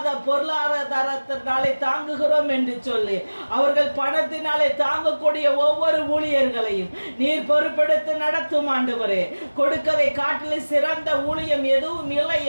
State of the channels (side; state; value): both; inverted; correlation -1.00